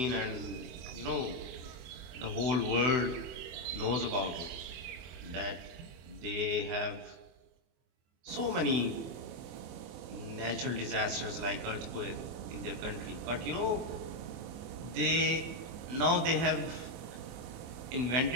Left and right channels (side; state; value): left; late; 24 ms